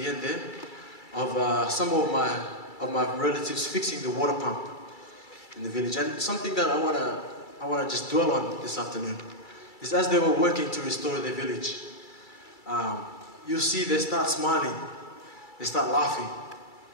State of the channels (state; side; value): late; right; 2.3 ms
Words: end there of some of my relatives fixing the water pump in the village. And something that I wanna just dwell on this afternoon is as they were working to restore their village, you see they start smiling, they start laughing,